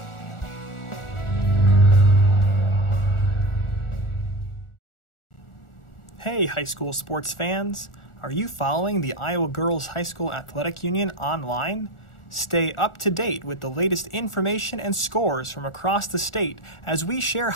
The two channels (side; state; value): right; late; 1.4 ms